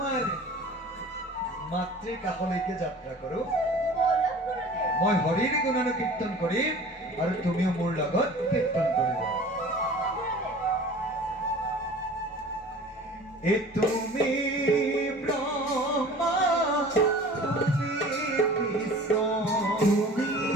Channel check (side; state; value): both; normal; correlation 0.44